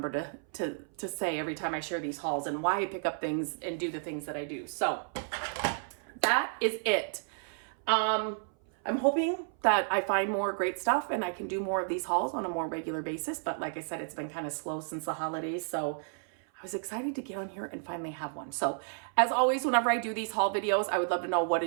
to say every time I share these hauls and why I pick up things and do the things that I do. So that is it. I'm hoping that I find more great stuff and I can do more of these hauls on a more regular basis. But like I said, it's been kind of slow since the holidays. So I was excited to get on here and finally have one. So as always, whenever I do these haul videos, I would love to know, what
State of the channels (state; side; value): silent; left; 57 dB below the other